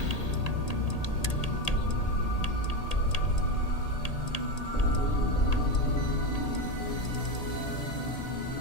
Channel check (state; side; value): late; right; 1.8 ms